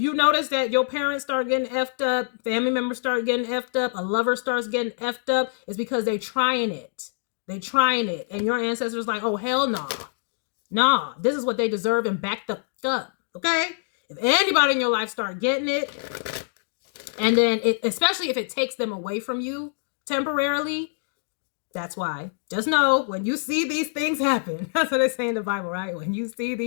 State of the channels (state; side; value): silent; right; digital silence